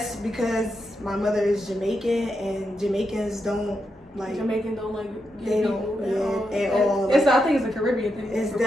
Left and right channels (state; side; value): normal; both; correlation 0.84